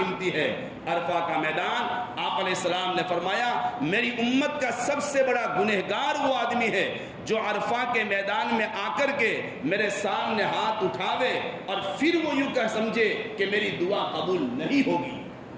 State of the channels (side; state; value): both; identical; correlation 1.00